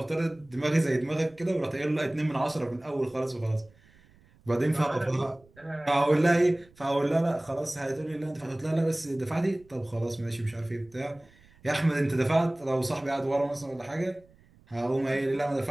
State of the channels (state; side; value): noise; right; rumble, 29 dB below the sound